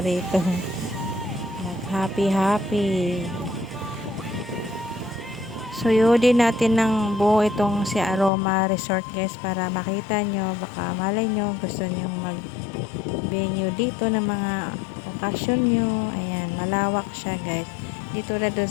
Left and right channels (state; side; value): drops out; right; at 8.3 s